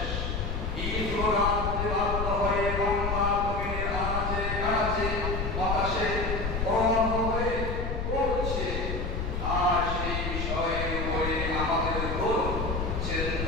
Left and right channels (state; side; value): noise; left; rumble, 2 dB below the sound